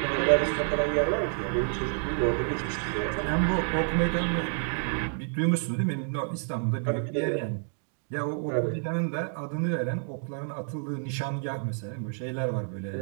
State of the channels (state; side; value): silent; left; 59 dB below the other